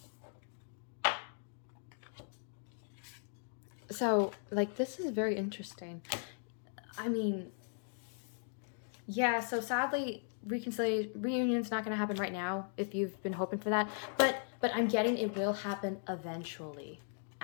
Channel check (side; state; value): right; silent; 53 dB below the other